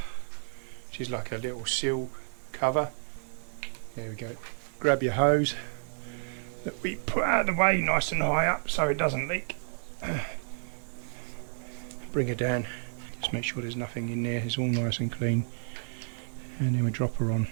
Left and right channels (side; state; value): left; silent; 57 dB below the other